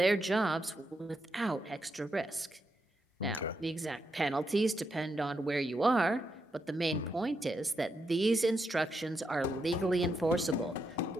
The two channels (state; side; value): normal; both; correlation 0.83